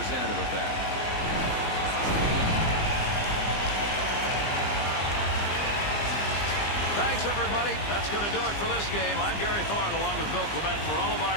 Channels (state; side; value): late; right; 20 ms